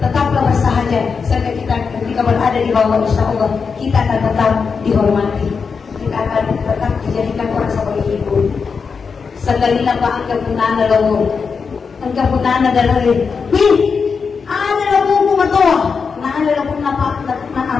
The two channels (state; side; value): quieter; right; 5.5 dB